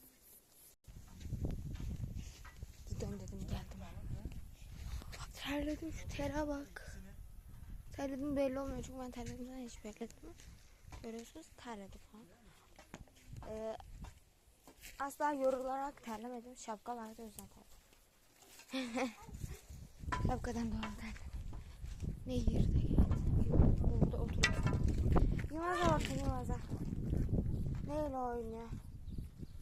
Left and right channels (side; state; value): both; identical; correlation 1.00